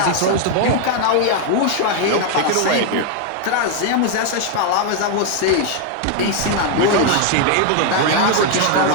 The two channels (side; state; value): both; different; correlation 0.01